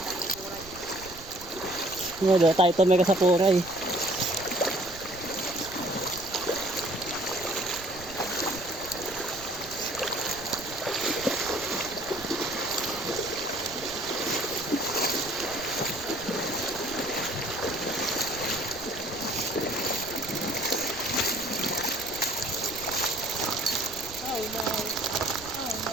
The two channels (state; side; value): noise; right; rumble, 18 dB below the sound